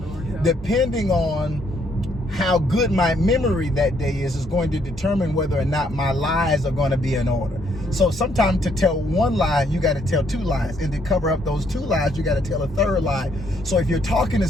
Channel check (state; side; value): normal; both; correlation 0.70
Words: depending on how good my memory that day is going to determine whether or not my lies are going to be in order. So sometimes to tell one lie, you got to tell 2 lies. And to cover up those 2 lies, you got to tell a 3rd lie. So if you're talking to